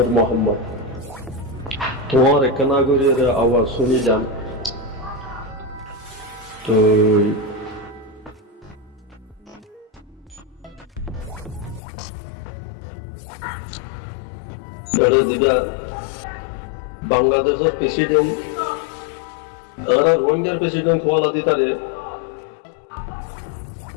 মোহাম্মদ তোমার কানাগুরের আওয়াজ শুনিলাম। তো এটা দিবা বাংলাদেশের প্রেসিডেন্ট আর রোহিঙ্গার প্রেসিডেন্ট হওয়া দিতারে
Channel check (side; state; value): right; drops out; at 11.8 s